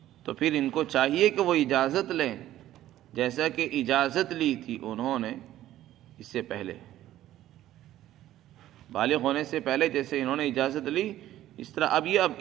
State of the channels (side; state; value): left; quieter; 13.5 dB